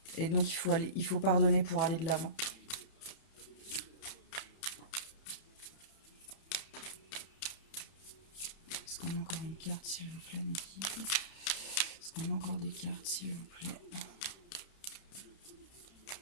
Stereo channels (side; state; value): right; late; 31 ms